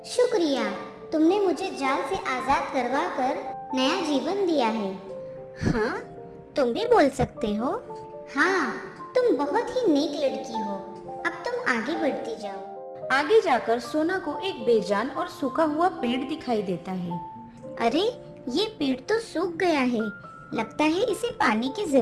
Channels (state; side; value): identical; both; correlation 1.00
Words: शुक्रिया, तुमने मुझे जाल से आजाद करवा कर नया जीवन दिया है। हाँ, तुम भी बोल सकते हो। हाँ, तुम बहुत ही नेक लड़की हो। अब तुम आगे बढ़ती जाओ। आगे जाकर सोना को एक बेजान और सूखा हुआ पेड़ दिखाई देता है। अरे, ये पेड़ तो सूख गया है। लगता है इसे पानी की